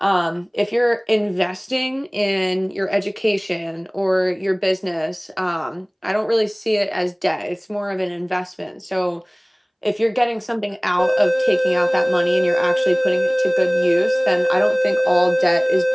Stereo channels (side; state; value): both; identical; correlation 1.00